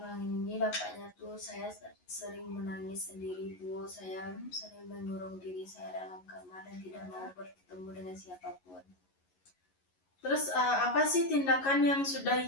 ini dampaknya tuh saya sering menangis sendiri, Bu. Saya sering mengurung diri saya dalam kamar dan tidak mau bertemu dengan siapapun. Terus apa sih tindakan yang sudah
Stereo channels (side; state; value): right; late; 11 ms